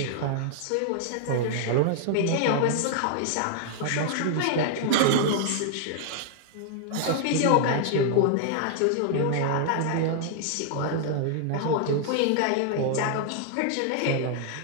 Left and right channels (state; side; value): different; both; correlation -0.01